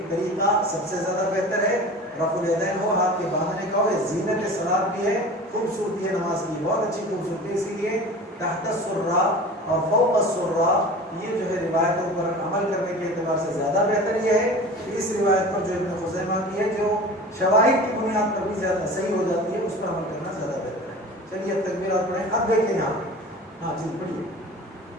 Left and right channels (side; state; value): both; normal; correlation 0.37